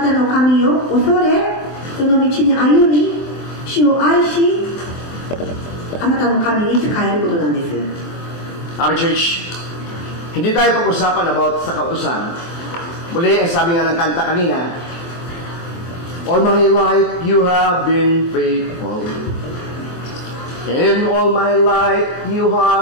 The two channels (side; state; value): right; late; 24 ms